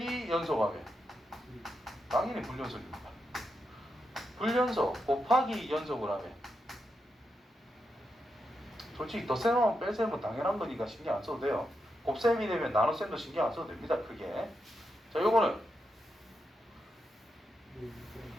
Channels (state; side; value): normal; both; correlation 0.85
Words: 연속하면 당연히 불연속입니다. 불연속 곱하기 연속을 하면 솔직히 덧셈하면 뺄셈은 당연한 거니까 신경 안 써도 돼요. 곱셈이 되면 나눗셈도 신경 안 써도 됩니다. 크게. 자, 요거는